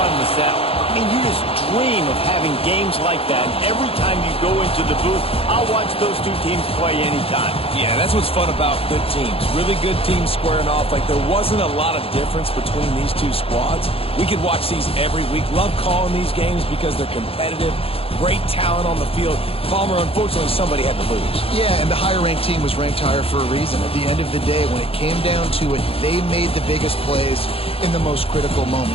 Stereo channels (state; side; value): late; right; 0.27 ms